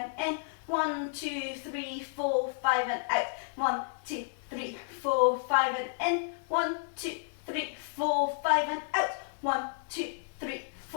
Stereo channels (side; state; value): right; silent; digital silence